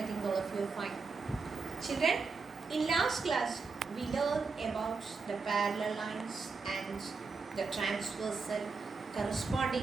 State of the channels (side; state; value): left; quieter; 4.5 dB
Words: think all of you are fine. Children, in last class, we learned about the parallel lines and the transversal,